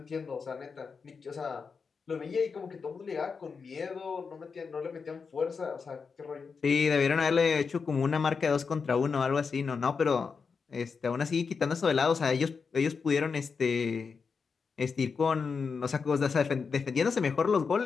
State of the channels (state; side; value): quieter; right; 5.4 dB